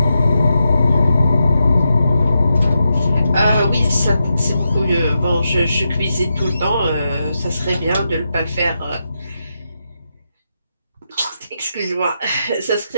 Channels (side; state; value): both; inverted; correlation -0.86